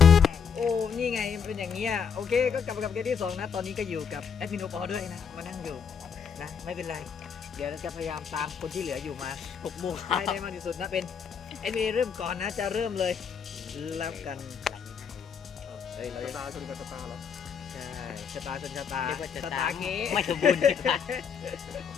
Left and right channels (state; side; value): quieter; right; 6.7 dB